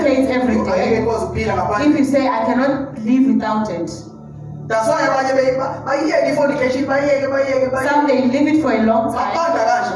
every day. Angeke ukwazi ukuphila If ngaphandle. you say, I cannot live without it, That's why abanye bayiyeke i-fornication bayiyeke. some they leave it for a long time,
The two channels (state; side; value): identical; both; correlation 1.00